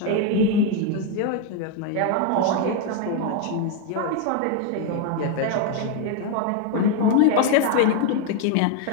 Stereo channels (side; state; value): both; different; correlation 0.01